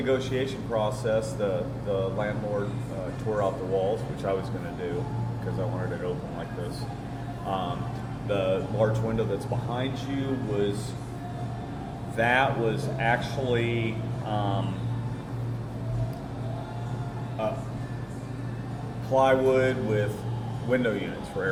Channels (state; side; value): identical; both; correlation 1.00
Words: process, the landlord tore out the walls, which I was going to do because I wanted it open like this. The large window that's behind you was actually plywood with window units for